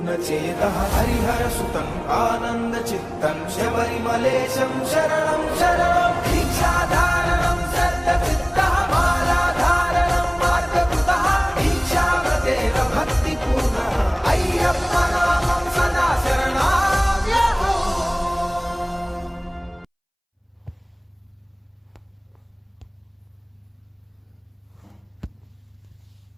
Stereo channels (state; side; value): identical; both; correlation 1.00